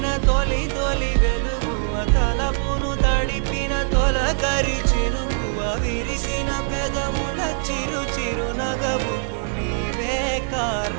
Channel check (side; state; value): left; silent; 64 dB below the other